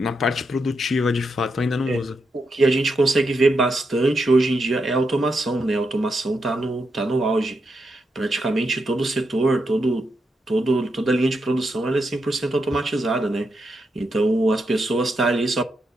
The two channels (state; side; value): normal; both; correlation 0.83